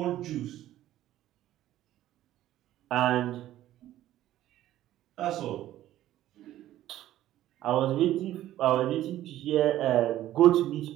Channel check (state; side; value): quieter; left; 13.6 dB